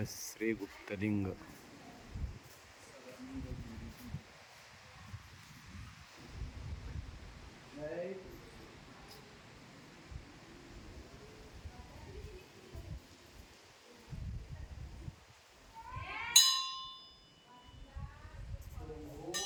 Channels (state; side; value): identical; both; correlation 1.00